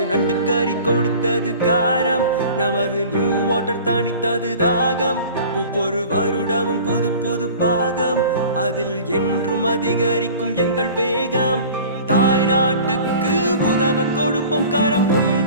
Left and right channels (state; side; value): inverted; both; correlation -0.43